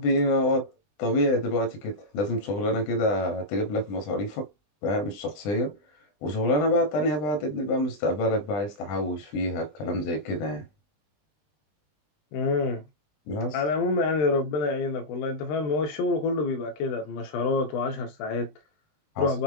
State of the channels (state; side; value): late; right; 20 ms